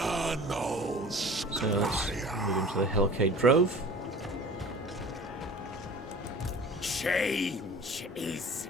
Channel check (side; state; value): both; normal; correlation 0.42